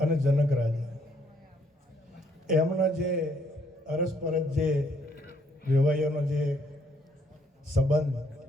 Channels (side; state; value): both; normal; correlation 0.69